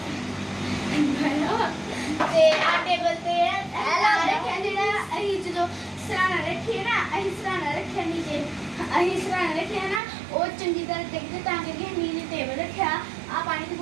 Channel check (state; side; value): drops out; left; at 10.0 s